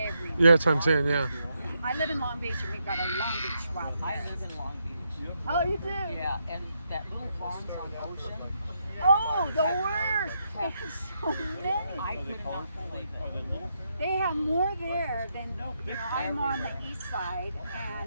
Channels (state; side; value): inverted; both; correlation -0.80